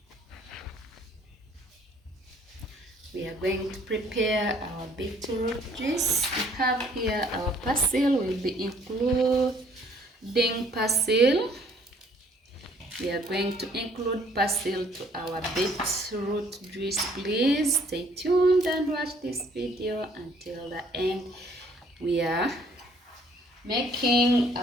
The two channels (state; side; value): normal; both; correlation 0.61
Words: We are going to prepare our beetroot juice. We have here our Persely. We'll be including Persely. We are going to include Persely to our beetroot juice. Please stay tuned and watch this video until the end. We are making